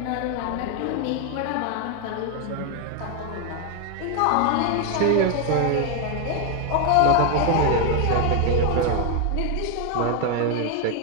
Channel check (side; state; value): both; different; correlation 0.01